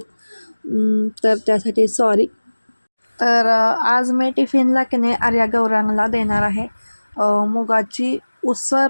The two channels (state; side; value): inverted; both; correlation -1.00